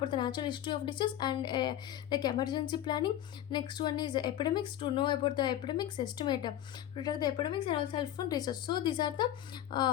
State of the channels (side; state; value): right; quieter; 12.2 dB